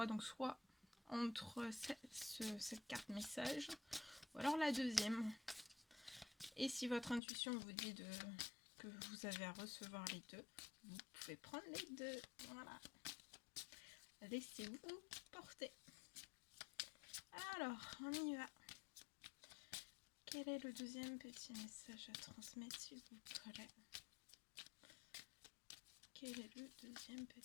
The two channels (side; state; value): right; drops out; at 7.2 s